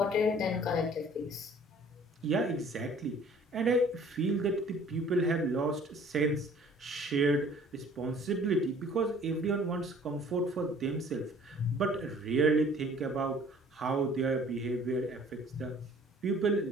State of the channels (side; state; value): both; normal; correlation 0.53